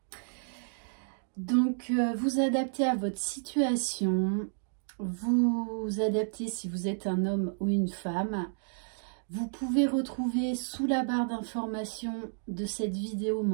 Donc vous adaptez à votre situation, vous adaptez si vous êtes un homme ou une femme. Vous pouvez retrouver sous la barre d'information de cette vidéo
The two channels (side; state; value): left; silent; digital silence